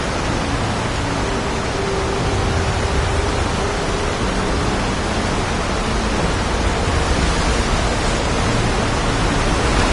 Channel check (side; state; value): both; identical; correlation 1.00